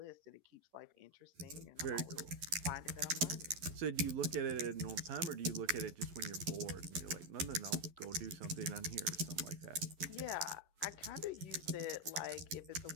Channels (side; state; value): left; late; 11 ms